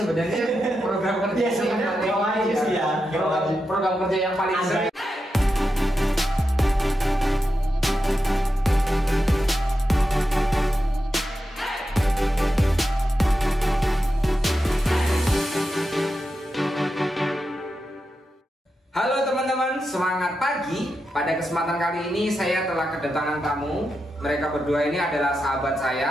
program kerja yang paling program kerja yang paling sering. Halo teman-teman, semangat pagi. Pada kesempatan kali ini saya telah kedatangan tamu. Mereka berdua ini adalah sahabat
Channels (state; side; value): normal; both; correlation 0.88